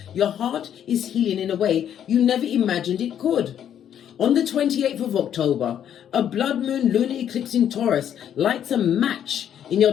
your heart is healing in a way you never imagined it could. On the 28th of October, a blood moon lunar eclipse in Taurus lights a match in your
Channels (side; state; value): right; quieter; 9.7 dB